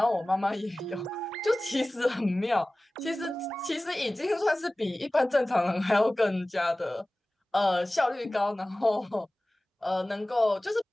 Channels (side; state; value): both; normal; correlation 0.98